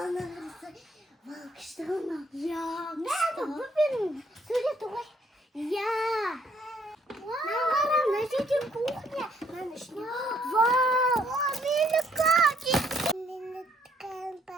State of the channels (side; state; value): both; normal; correlation 0.67